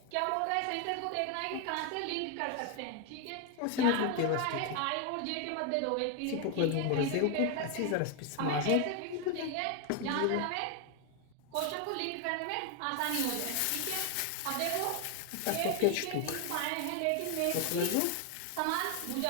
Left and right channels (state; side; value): different; both; correlation 0.01